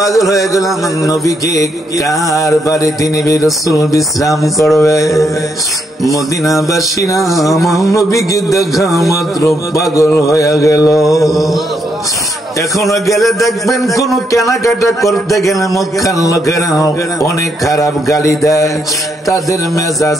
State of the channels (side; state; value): both; normal; correlation 0.77